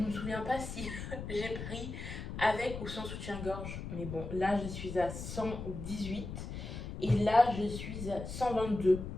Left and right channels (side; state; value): left; noise; rumble, 7 dB below the sound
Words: me souviens pas si j'ai pris avec ou sans soutien-gorge. Mais bon, là, je suis à 118 et là, je suis à 122.